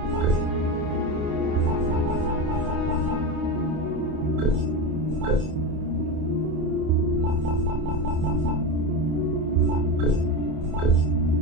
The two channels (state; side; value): late; left; 28 ms